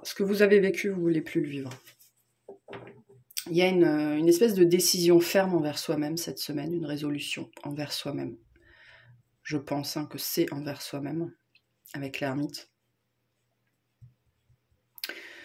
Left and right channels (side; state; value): both; identical; correlation 1.00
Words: Ce que vous avez vécu, vous ne voulez plus le vivre. Il y a une espèce de décision ferme envers soi-même cette semaine, une résolution envers soi-même. Je pense que c'est envers soi-même, avec l'ermite.